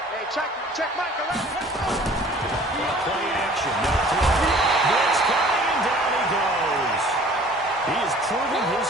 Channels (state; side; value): normal; both; correlation 0.50